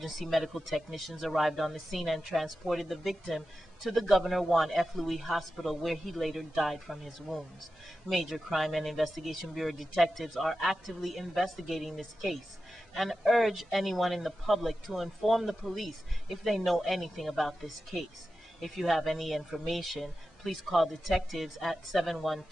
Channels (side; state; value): both; normal; correlation 0.92